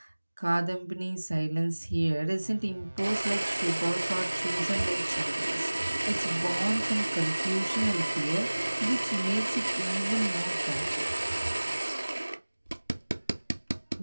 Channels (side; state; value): both; inverted; correlation -1.00